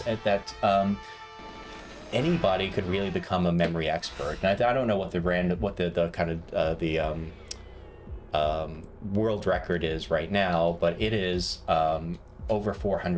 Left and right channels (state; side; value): identical; both; correlation 1.00